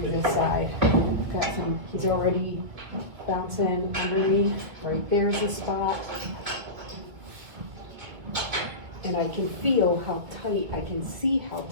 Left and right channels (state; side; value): late; left; 2.1 ms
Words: this side. Got some, he's already bouncing under me. Right there's the spot. And I can feel how tight, I can see how